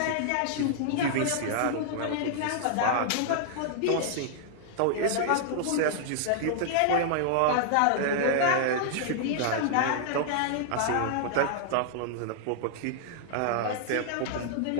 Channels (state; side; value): different; both; correlation -0.01